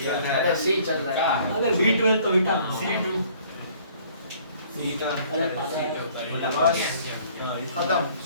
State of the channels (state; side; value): inverted; both; correlation -0.57